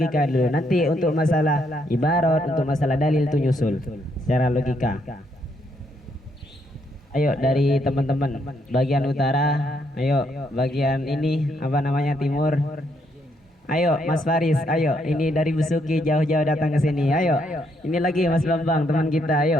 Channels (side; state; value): both; normal; correlation 0.74